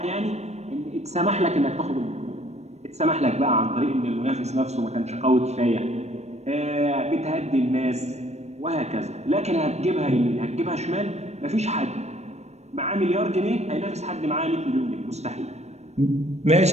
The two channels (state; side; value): late; left; 0.32 ms